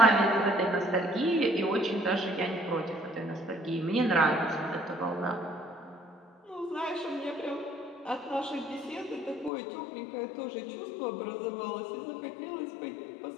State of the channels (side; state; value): right; drops out; at 9.5 s